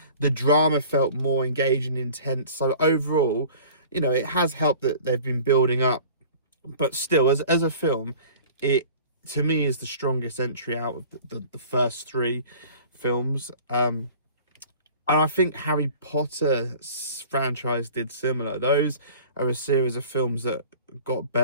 the drama felt more engaging and intense. So overall, you know, it has helped that they've been building up, but still, as a film, it, to me, is the strongest entry out of the first three films. And I think Harry Potter franchise did similar. Those are a series of films that got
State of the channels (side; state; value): both; inverted; correlation -0.45